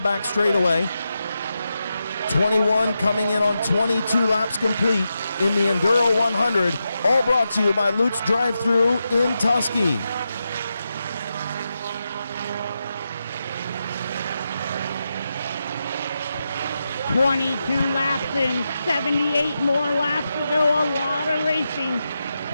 back straightaway. 21 coming in on 22 laps complete in the Enduro 100, all brought to you by Lutz Drive-Thru in Tusky. "22 laps in, 78 more laps to go. A lot of racing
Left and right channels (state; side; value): inverted; both; correlation -0.88